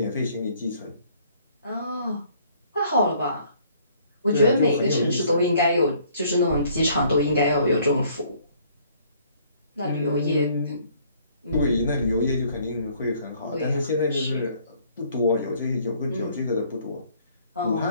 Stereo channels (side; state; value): both; inverted; correlation -0.61